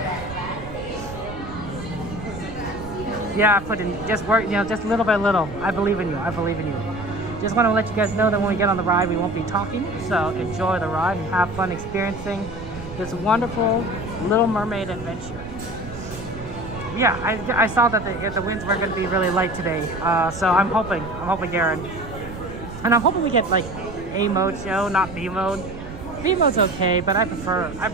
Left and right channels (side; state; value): right; noise; rumble, 12 dB below the sound